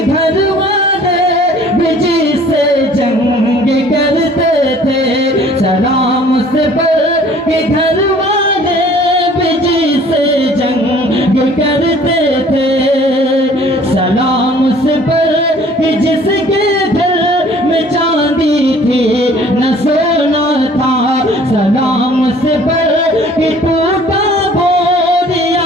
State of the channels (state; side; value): normal; both; correlation 0.53